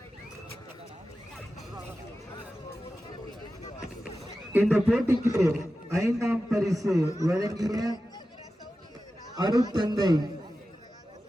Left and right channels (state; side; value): normal; both; correlation 0.93